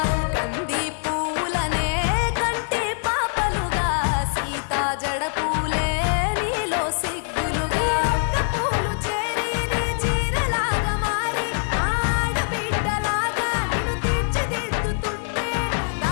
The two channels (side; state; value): right; silent; digital silence